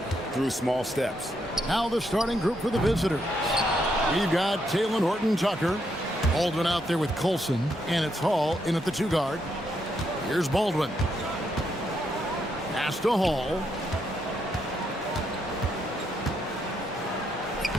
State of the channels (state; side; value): normal; both; correlation 0.78